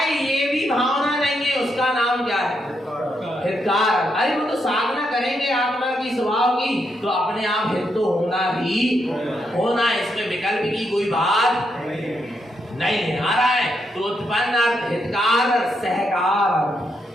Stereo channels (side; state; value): both; normal; correlation 0.80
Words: ये भी भावना नहीं है, उसका नाम क्या है? हितकार। अरे वो तो साधना करेंगे आत्मा की स्वभाव की तो अपने आप हित तो होना ही होना, इसमें विकल्प की कोई बात नहीं है। आ रहा है तो उत्पन्न अर्थ हितकार और सहकार।